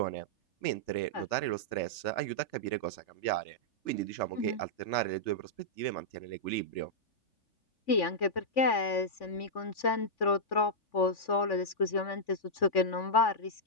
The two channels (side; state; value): right; late; 3.5 ms